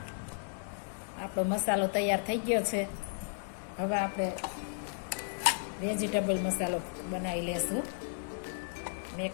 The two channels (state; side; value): silent; right; 55 dB below the other